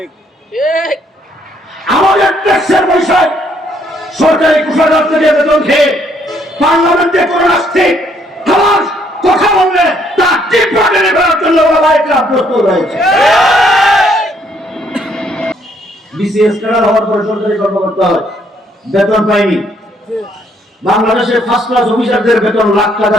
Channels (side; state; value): both; normal; correlation 0.68